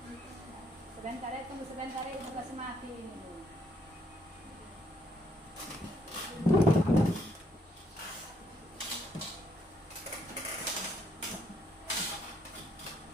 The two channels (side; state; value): both; normal; correlation 0.71